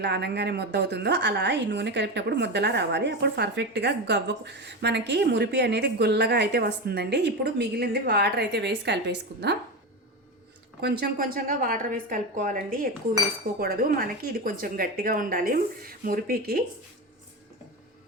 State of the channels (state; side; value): normal; both; correlation 0.19